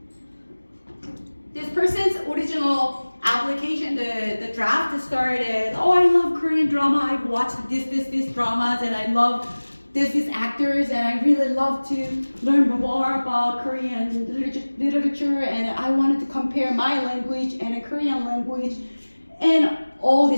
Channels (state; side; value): inverted; both; correlation -1.00